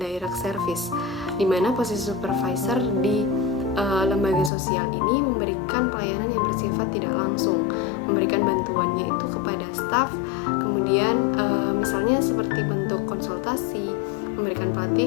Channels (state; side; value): drops out; right; at 4.5 s